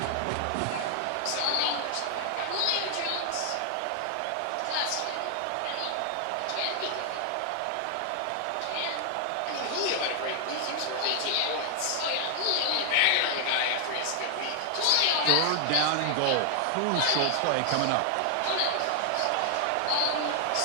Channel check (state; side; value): different; both; correlation 0.00